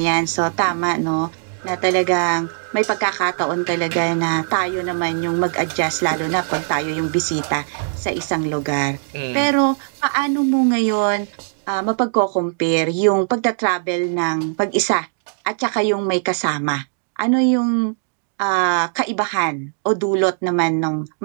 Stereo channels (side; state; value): left; silent; digital silence